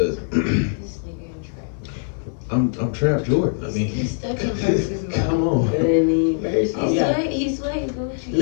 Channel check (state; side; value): silent; right; 64 dB below the other